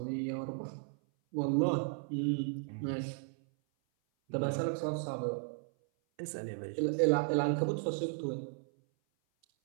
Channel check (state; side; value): silent; left; 54 dB below the other